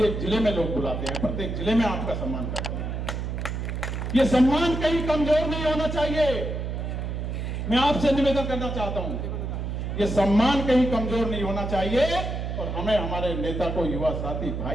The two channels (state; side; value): noise; right; hum, 3 dB below the sound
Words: जिले में लोग बुलाते हैं, प्रत्येक जिले में आपका सम्मान करते हैं। ये सम्मान कहीं कमजोर नहीं होना चाहिए। मैं आपसे निवेदन करना चाहता हूं, ये सम्मान कहीं कमजोर नहीं होना चाहिए, और हमें हमारे नेता को, युवा साथी